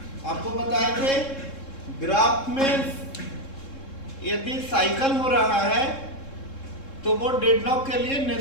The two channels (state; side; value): late; right; 3.7 ms